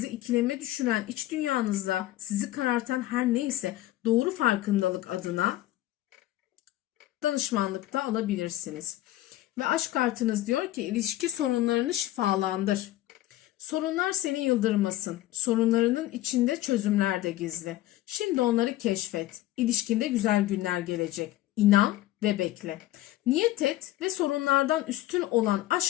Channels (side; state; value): right; quieter; 15.3 dB